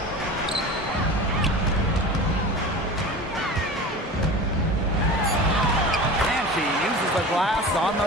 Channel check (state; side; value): normal; both; correlation 0.34